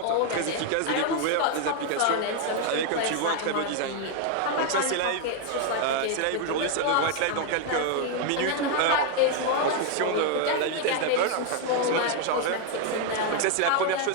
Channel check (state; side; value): different; both; correlation 0.00